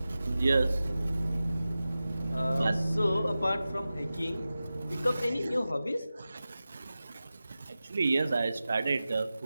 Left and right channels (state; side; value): inverted; both; correlation -0.95